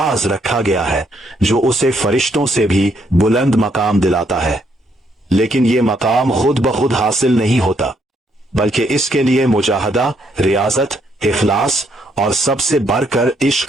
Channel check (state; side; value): normal; both; correlation 0.72